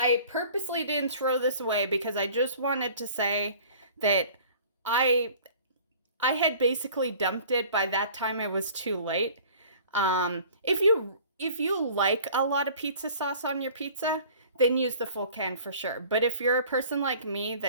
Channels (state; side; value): inverted; both; correlation -0.48